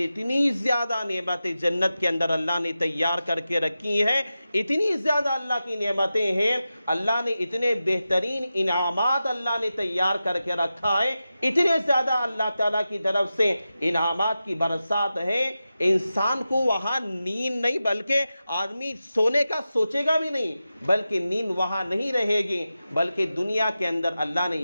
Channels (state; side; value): inverted; both; correlation -0.92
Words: اتنی زیادہ نعمتیں جنت کے اندر اللہ نے تیار کر کے رکھی ہیں، اتنی زیادہ اللہ کی نعمتیں ہیں، اللہ نے اتنے بہترین انعامات اللہ نے تیار کر کے رکھا ہے، اتنے زیادہ اللہ تعالیٰ کی طرف سے انعامات کی برسات ہے۔ انسان کو وہاں نیند نہیں، بلکہ آدمی سونے کا سوچے گا بھی نہیں، بلکہ نیند وہاں نہیں رہے گی، بلکہ دنیا کے اندر اللہ نے